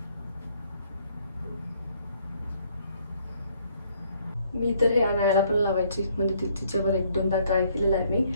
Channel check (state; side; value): inverted; both; correlation -0.65